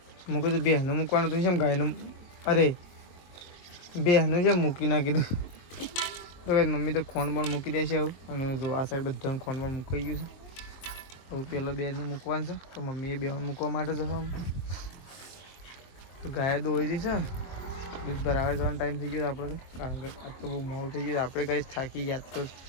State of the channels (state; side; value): late; right; 23 ms